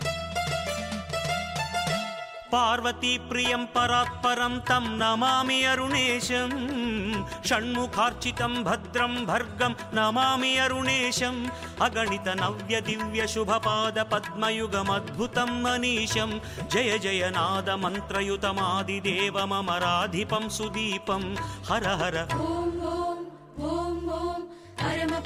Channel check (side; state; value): both; identical; correlation 1.00